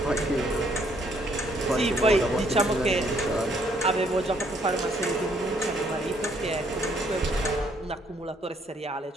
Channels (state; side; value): normal; both; correlation 0.67